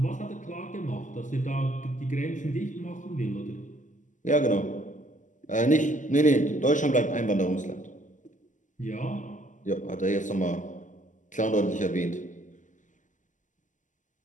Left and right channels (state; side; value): late; right; 0.37 ms